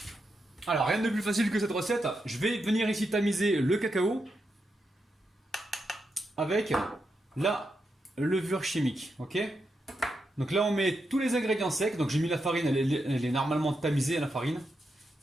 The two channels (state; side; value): normal; both; correlation 0.85